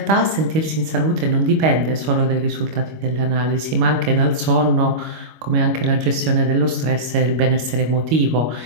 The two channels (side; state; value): left; late; 25 ms